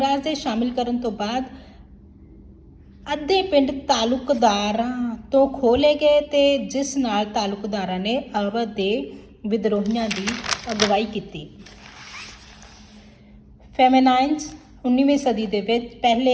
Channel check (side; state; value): both; identical; correlation 1.00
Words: ਦੇ ਸ਼ਾਮਿਲ ਕਰਨ ਤੋਂ ਬਾਅਦ ਅੱਧੇ ਪਿੰਡ ਤਾਲੁਕਦਾਰਾਂ ਤੋਂ ਖੋਹ ਲਏ ਗਏ ਤੇ ਜਿਸ ਨਾਲ ਤਾਲੁਕਦਾਰਾਂ ਨੇ ਅਵਧ ਦੇ ਵਿਦਰੋਹੀਆਂ ਦੀ ਅਗਵਾਈ ਕੀਤੀ। ਫੈਮੇਨਾਈਨਸ 19ਵੀਂ ਸਦੀ ਦੇ ਵਿੱਚ